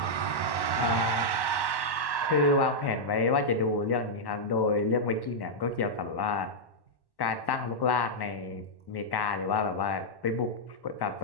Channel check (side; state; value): right; late; 1.1 ms